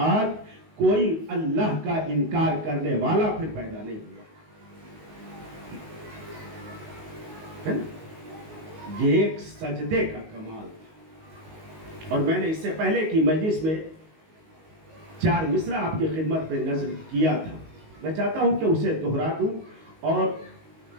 کوئی اللہ کا انکار کرنے والا پھر پیدا نہیں ہوا. یہ ایک سجدے کا کمال تھا. اور میں نے اس سے پہلے کی مجلس میں 4 مصرع آپ کی خدمت میں نظر کیا تھا. میں چاہتا ہوں کہ اسے دہرا دوں اور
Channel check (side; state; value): left; late; 19 ms